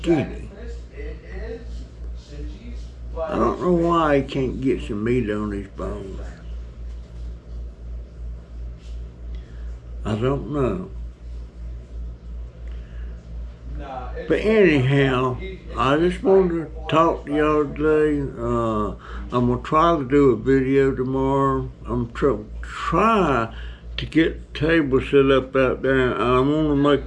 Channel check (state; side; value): identical; both; correlation 1.00